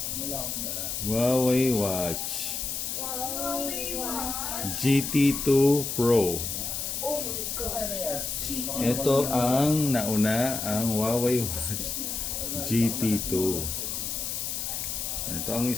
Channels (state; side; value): noise; left; hiss, 3 dB below the sound